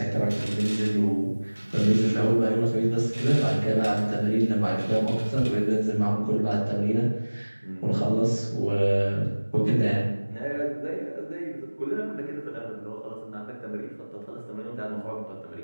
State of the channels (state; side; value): inverted; both; correlation -1.00